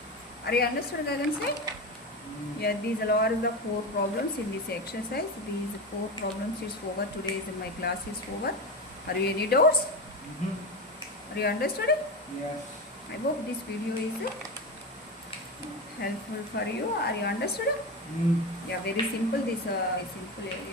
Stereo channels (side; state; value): both; normal; correlation 0.20